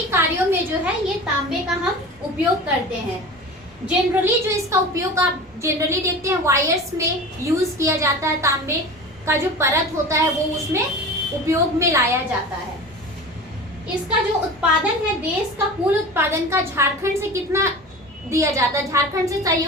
कार्यों में जो है ये तांबे का हम उपयोग करते हैं। जनरली जो इसका उपयोग आप जनरली देखते हैं वायर्स में यूज किया जाता है, तांबे का जो परत होता है वो उसमें उपयोग में लाया जाता है। इसका जो उत्पादन है, देश का कुल उत्पादन का झारखंड से कितना दिया जाता है? झारखंड से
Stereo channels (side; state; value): both; normal; correlation 0.34